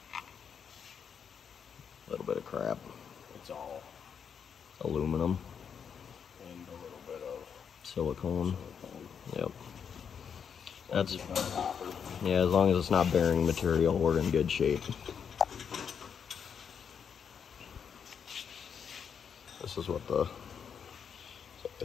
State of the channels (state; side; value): quieter; right; 7.2 dB